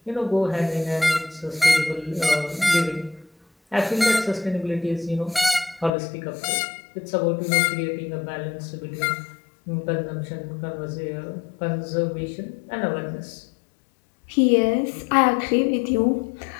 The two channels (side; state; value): right; drops out; at 5.9 s